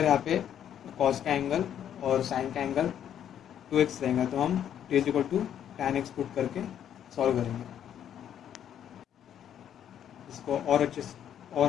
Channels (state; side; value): quieter; right; 9.8 dB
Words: यहाँ पे cos का एंगल और sin का एंगल 2x रहेगा तो हम t is equal to tan x put करके सॉल्व करेंगे। इसको और